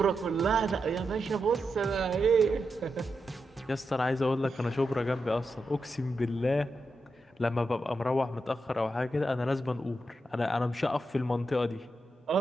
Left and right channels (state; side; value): normal; both; correlation 0.87